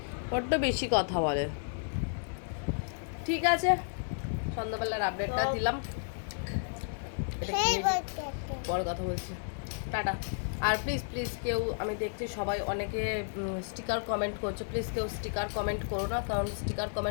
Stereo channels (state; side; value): silent; right; 56 dB below the other